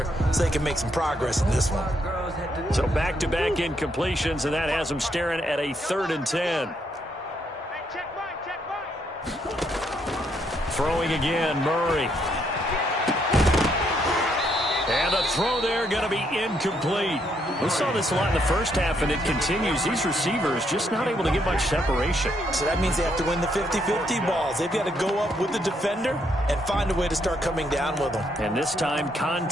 so they can make some progress in this one. So back-to-back incompletions, and that has them staring at a 3rd and 10. Throwing again, Murray. And the throw there going to be incomplete. We saw this a lot in the first half, and it continues. These receivers just not able to get much separation. So that means they have to win the 50-50 balls. They've got to go up with the defender and find a way to start coming down with them. And this time,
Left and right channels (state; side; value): normal; both; correlation 0.74